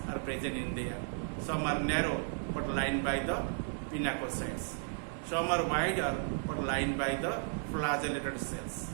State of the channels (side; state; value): left; silent; 55 dB below the other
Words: are present in there. Some are narrow but lined by the pinacocytes. Some are wider but lined by the flagellated cells.